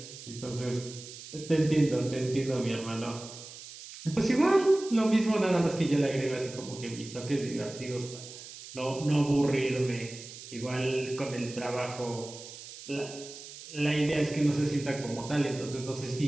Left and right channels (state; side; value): noise; right; hiss, 14 dB below the sound